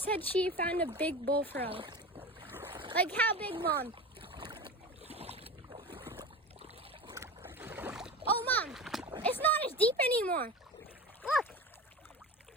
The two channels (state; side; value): normal; both; correlation 0.30